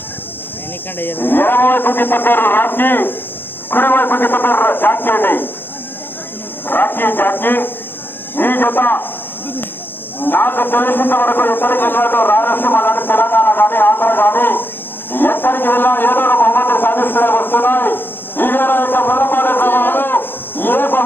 ఎడమవైపుకి పడ్డారు రాఖీ, కుడివైపుకి పడ్డారు జాకీ అండి. రాఖీ జాకీ ఈ జత నాకు తెలిసినంత వరకు ఎక్కడికి వెళ్ళాడో రాయలసీమ కానీ తెలంగాణ కానీ ఆంధ్ర కానీ ఎక్కడికి వెళ్ళా ఏదో ఒక బహుమతి సాధిస్తూనే వస్తున్నాయి. ఈ వేళ యొక్క మొదలపాడే గ్రామంలో ఏ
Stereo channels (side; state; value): right; late; 0.10 ms